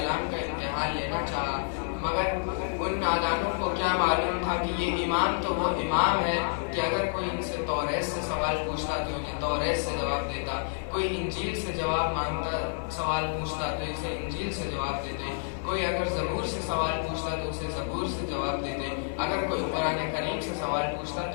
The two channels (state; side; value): silent; right; 59 dB below the other